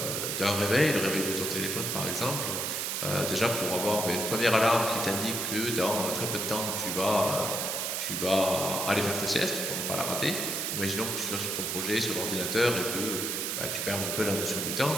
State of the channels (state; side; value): noise; right; hiss, 1 dB below the sound